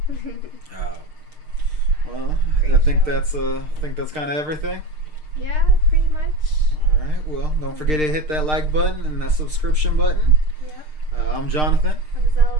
Oh. Well, Great I think show. that's kind of everything. Yeah, pretty much. All right. Well, don't forget to hit that like button and that subscription button. Yep. I'm Jonathan. I'm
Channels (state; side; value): late; left; 6.6 ms